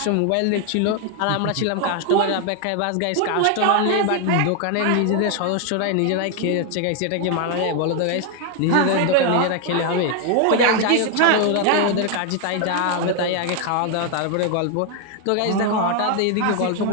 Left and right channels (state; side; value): different; both; correlation 0.00